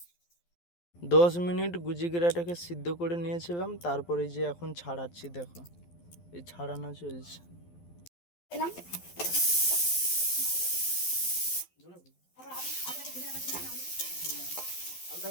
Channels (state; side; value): late; right; 12 ms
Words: 10 মিনিট গুজিগেরাটাকে সিদ্ধ করে নিয়েছিলাম, তারপরে যে এখন ছাড়াচ্ছি, দেখো এই ছাড়ানো চলছে। এলাম